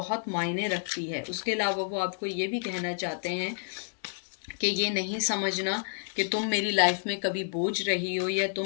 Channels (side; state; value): right; silent; digital silence